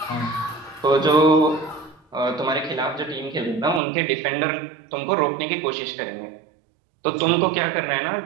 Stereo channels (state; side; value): drops out; left; at 3.8 s